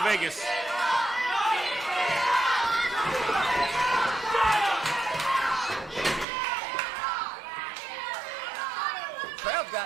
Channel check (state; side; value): drops out; left; at 6.2 s